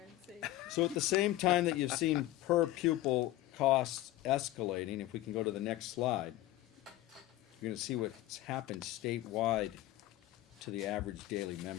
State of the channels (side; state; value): right; quieter; 15.9 dB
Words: and see. So at the same time that you've seen per pupil costs escalating, if we can go to the next slide, you're gonna see what's happened statewide to the average daily